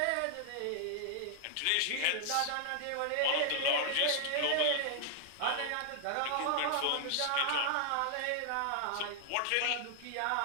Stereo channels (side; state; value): both; different; correlation 0.00